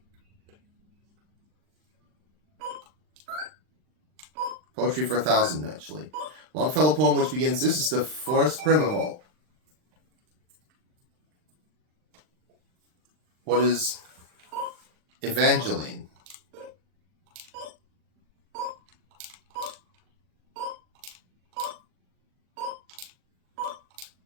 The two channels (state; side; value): late; left; 39 ms